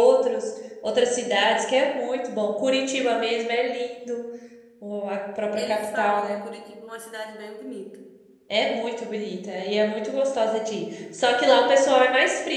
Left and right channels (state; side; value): identical; both; correlation 1.00